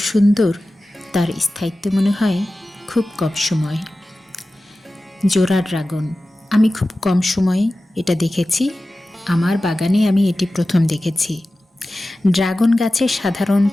সুন্দর তার স্থায়িত্ব মনে হয় খুব কম সময়। জোড়া ড্রাগন আমি খুব কম সময়ে এটা দেখেছি। আমার বাগানে আমি এটি প্রথম দেখেছি। ড্রাগন গাছে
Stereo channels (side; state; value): both; normal; correlation 0.95